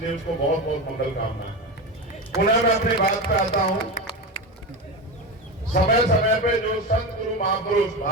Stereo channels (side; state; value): both; normal; correlation 0.20